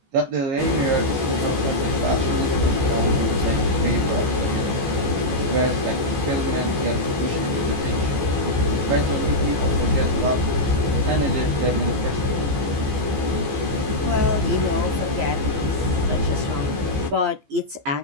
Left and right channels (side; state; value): left; late; 15 ms